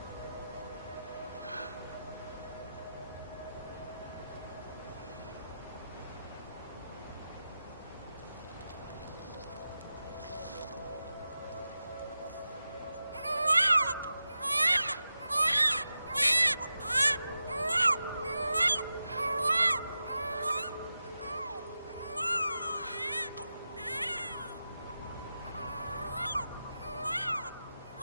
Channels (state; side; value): inverted; both; correlation -0.91